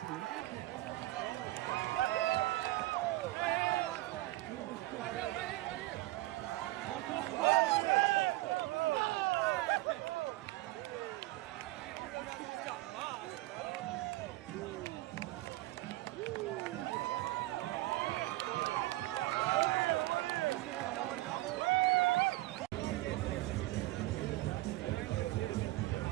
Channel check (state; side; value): quieter; left; 18.4 dB